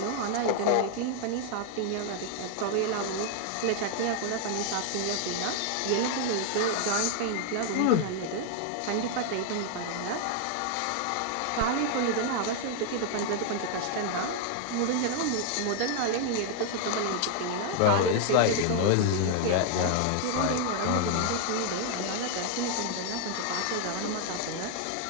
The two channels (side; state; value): both; different; correlation 0.00